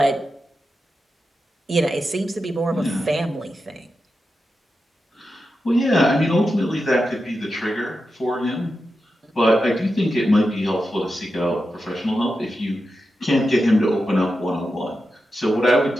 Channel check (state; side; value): normal; both; correlation 0.89